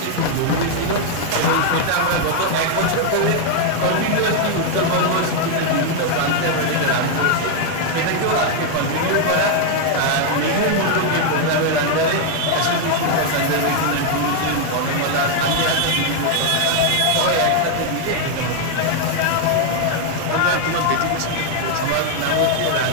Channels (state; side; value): different; both; correlation 0.00